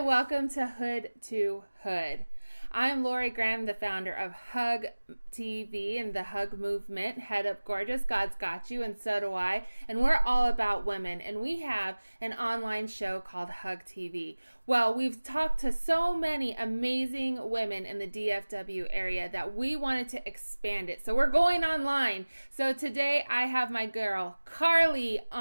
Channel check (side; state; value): both; inverted; correlation -1.00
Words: to Hood to Hood. I'm Lori Graham, the founder of HUGtv and the Hug movement. Head up gorgeous, God's got you, and so do I. And we're all about women, and we have an online show called HUGtv. Well, we've talked to so many amazing women in the DFW area that we wanted to expand it. So we're going online. So today I have my girl Carly